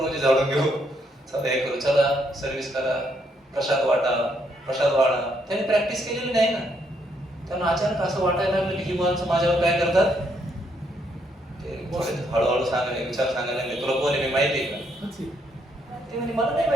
झाडून घेऊ, चला हे करू, चला सर्व्हिस करा, प्रसाद वाढा. त्याने प्रॅक्टिस केलेली नाही ना. त्यांना अचानक असं वाटायला लागलं की ही माणसं माझ्यावर काय करतात. ते हळूहळू सांगायला, विचार सांगायला लागले, तुला कोण आहे मी माहिती आहे का. ते म्हणजे मला नाही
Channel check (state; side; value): normal; both; correlation 0.73